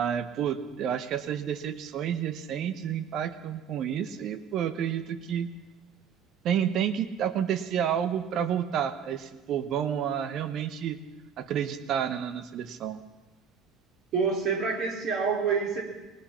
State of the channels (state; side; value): quieter; left; 7.6 dB